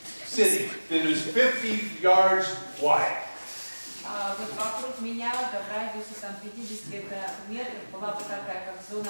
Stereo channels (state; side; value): inverted; both; correlation -1.00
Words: sitting that was 50 yards wide. вот вокруг меня, да, в радиусе там 50 метров, была бы такая, как